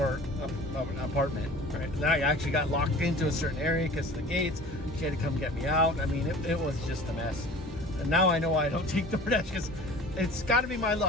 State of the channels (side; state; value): both; normal; correlation 0.43